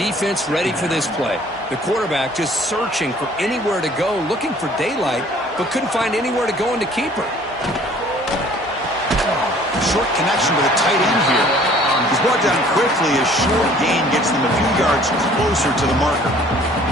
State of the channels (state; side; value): normal; both; correlation 0.54